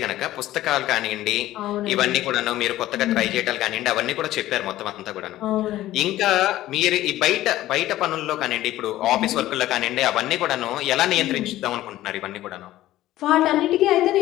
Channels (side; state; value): right; quieter; 14.9 dB